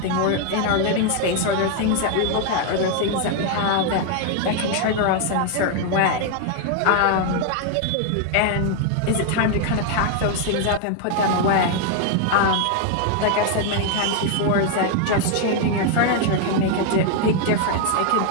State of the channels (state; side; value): different; both; correlation 0.00